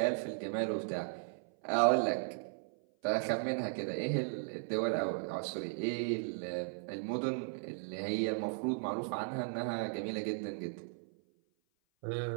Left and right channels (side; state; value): left; silent; 53 dB below the other